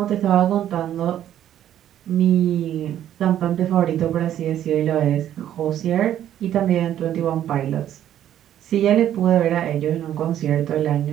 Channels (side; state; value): left; quieter; 11.2 dB